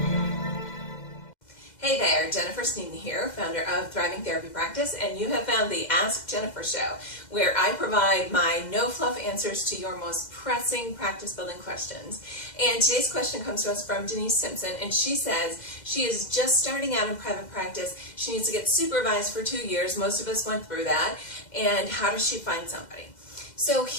Hey there, Jennifer Sneeden here, founder of Thriving Therapy Practice, and you have found the Ask Jennifer show, where I provide my no-fluff answers to your most pressing practice-building questions. And today's question comes to us from Denise Simpson, and she says she is just starting out in private practice. She needs to get supervised for 2 years. Most of us went through that. And how does she find somebody? So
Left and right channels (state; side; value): late; right; 2.0 ms